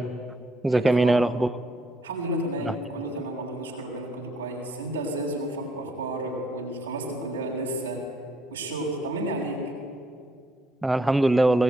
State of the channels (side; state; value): both; normal; correlation 0.69